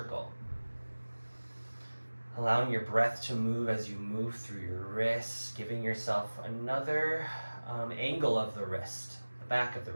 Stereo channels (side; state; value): both; inverted; correlation -1.00